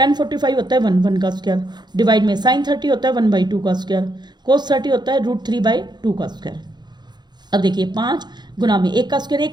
45 होता है 1 का स्क्वायर, डिवाइड में sin 30 होता है 1/2 का स्क्वायर, cos 30 होता है √3/2 का स्क्वायर। अब देखिए 5 गुना में 1 का स्क्वायर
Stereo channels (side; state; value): left; late; 0.21 ms